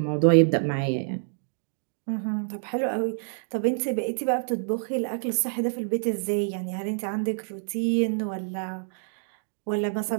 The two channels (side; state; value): left; silent; 60 dB below the other